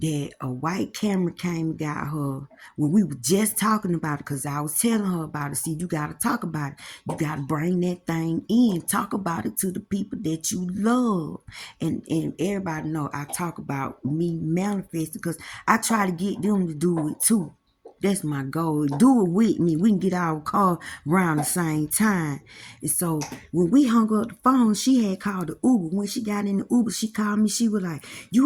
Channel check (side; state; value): both; identical; correlation 1.00